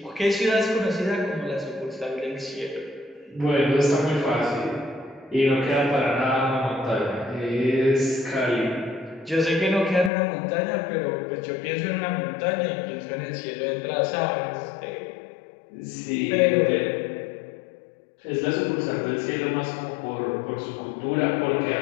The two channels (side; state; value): right; drops out; at 10.1 s